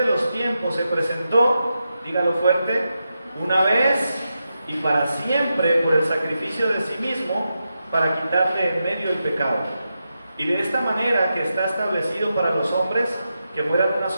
los tiempos, se presentó, dígalo fuerte, una vez y para siempre por el sacrificio de sí mismo, para quitarle en medio el pecado. Y de esta manera que está establecido para los hombres que mueran una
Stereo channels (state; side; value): inverted; both; correlation -0.88